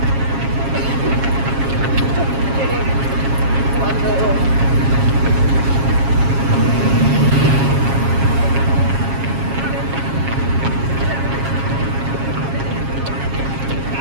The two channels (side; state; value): left; late; 7.4 ms